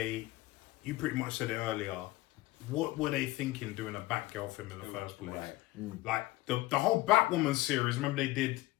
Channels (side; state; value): right; quieter; 18.7 dB